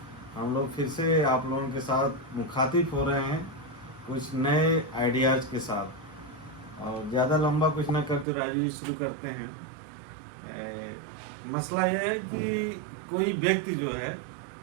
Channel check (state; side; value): drops out; left; at 8.2 s